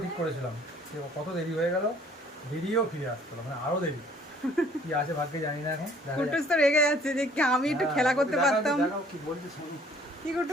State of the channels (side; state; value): both; normal; correlation 0.57